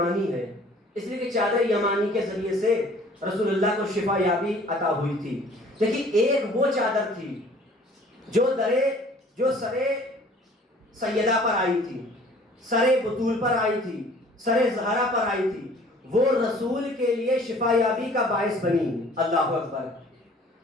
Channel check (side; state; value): both; normal; correlation 0.52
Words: ہے، اس لیے کہ چادر یمانی کے ذریعے سے رسول اللہ کو شفا یابی عطا ہوئی تھی۔ لیکن ایک وہ چادر تھی جو سرے سیدہ پر آئی تھی، سرے بطول پر آئی تھی، سرے زہرا پر آئی تھی، وہ رسول کے لیے شفا یابی کا باعث بنی۔ اللہ اکبر۔